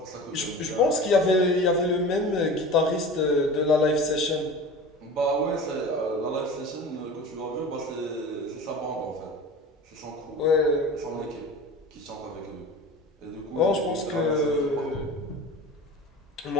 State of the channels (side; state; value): both; normal; correlation 0.36